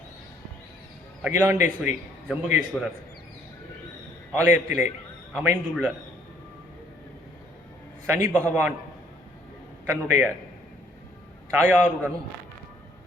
அகிலாண்டேஸ்வரி ஜம்புகேஸ்வரர் ஆலயத்திலே அமைந்துள்ள சனி பகவான் தன்னுடைய தாயாருடனும்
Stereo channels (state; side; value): normal; both; correlation 0.63